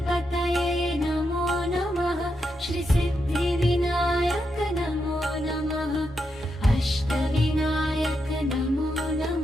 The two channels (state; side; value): normal; both; correlation 0.83